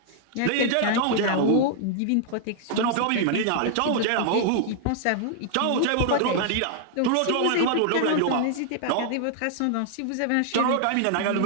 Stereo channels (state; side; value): different; both; correlation 0.00